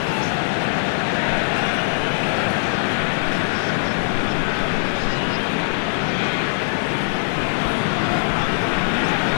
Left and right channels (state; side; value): silent; right; digital silence